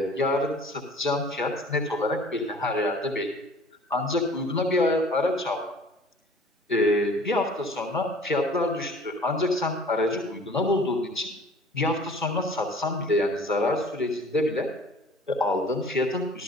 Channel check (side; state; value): both; normal; correlation 0.49